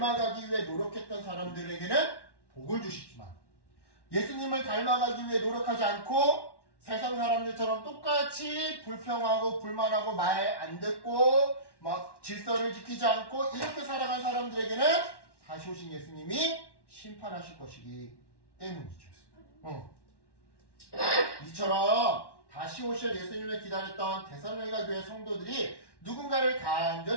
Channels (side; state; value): right; late; 1.1 ms